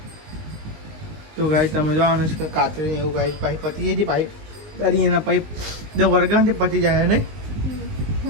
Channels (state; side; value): late; left; 19 ms